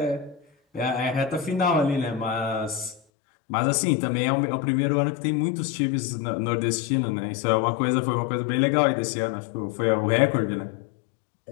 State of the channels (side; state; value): right; drops out; at 3.0 s